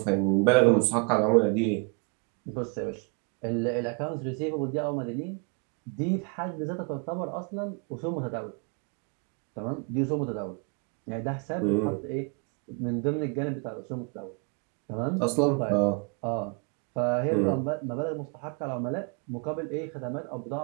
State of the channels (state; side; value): quieter; left; 35.1 dB